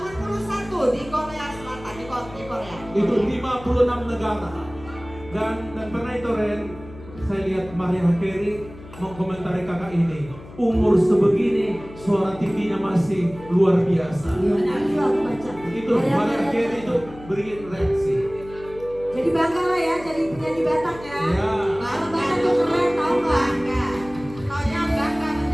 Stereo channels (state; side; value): noise; left; hum, 17 dB below the sound